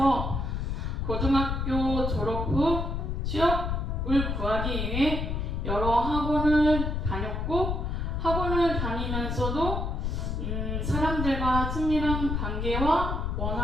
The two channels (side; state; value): left; noise; rumble, 1 dB below the sound